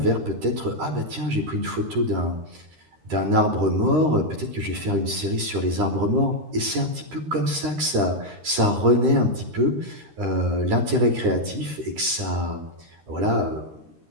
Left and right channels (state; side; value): late; left; 13 ms